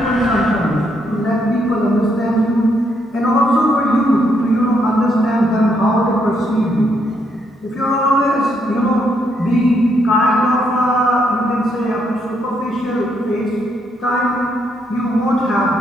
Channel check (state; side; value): normal; both; correlation 0.75